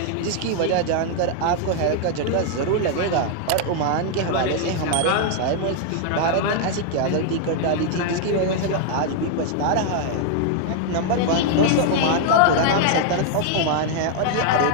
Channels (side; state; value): both; different; correlation 0.00